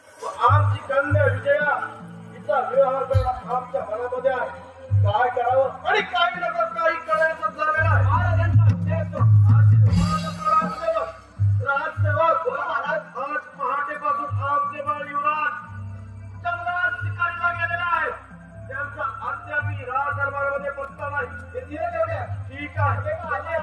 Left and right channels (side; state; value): both; identical; correlation 1.00